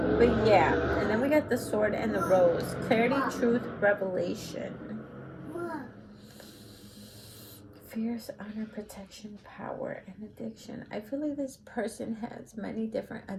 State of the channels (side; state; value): both; identical; correlation 1.00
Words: but yeah. And then we got the Sword and the Rose. Clarity, truth, revelation. Fierce, honor, protection, power, and addiction. I feel like this person has many different